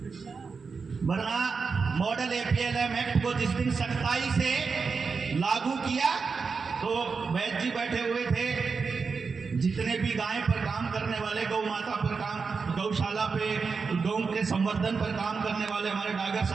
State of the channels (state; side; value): quieter; left; 5.0 dB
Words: वरना मॉडल APLM एक्ट को जिस दिन सख्ताई से लागू किया तो वैद्य जी बैठे हुए थे, जितने भी गाय पर काम करने वाले, गौ माता पर काम, गौशाला पे गौ के संवर्धन पर काम करने वाले हमारे डागर